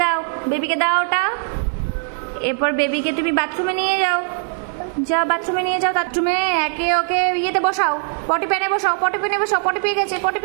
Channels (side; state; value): left; silent; 66 dB below the other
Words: দাও, বেবিকে দাও ওটা। এরপর বেবিকে তুমি বাথরুমে নিয়ে যাও, যাও বাথরুমে নিয়ে যাও। বাথরুমে একে ওকে ইয়েতে বসাও, পটি প্যানে বসাও, পটি প্যানে বসাও, পটি পেয়ে গেছে, পটি